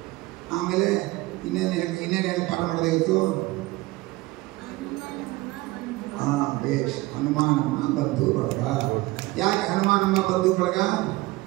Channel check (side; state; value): left; quieter; 20.0 dB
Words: ಆಮೇಲೆ ಇನ್ನೇನು ಹೇಳಿ ಪಾಠ ಮಾಡೋದು ಇವತ್ತು? ಬೇಷ್. ಹನುಮಾನಮ್ಮ ಬಂಧು ಬಳಗ. ಯಾಕೆ ಹನುಮಾನಮ್ಮ ಬಂಧು ಬಳಗ?